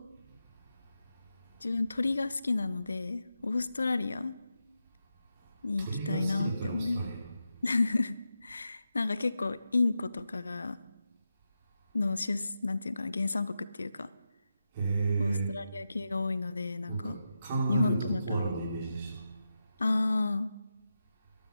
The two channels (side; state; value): both; inverted; correlation -0.89